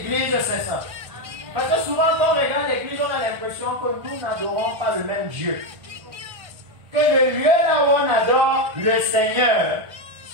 sait ça? Parce que souvent quand on regarde l'église, on a l'impression que nous n'adorons pas le même Dieu. Que le lieu là où on adore le Seigneur,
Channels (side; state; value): left; late; 1.5 ms